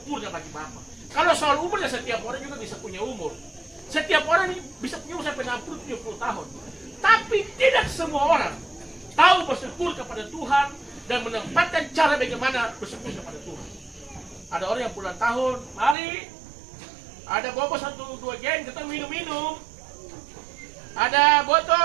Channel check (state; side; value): drops out; left; at 16.0 s